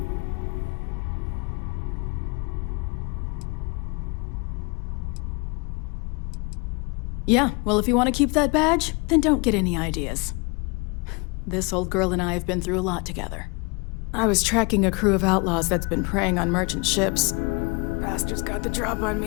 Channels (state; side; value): quieter; right; 29.8 dB